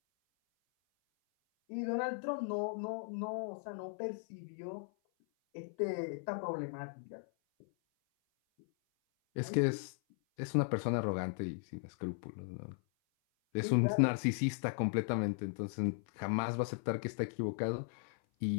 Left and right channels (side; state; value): right; silent; 53 dB below the other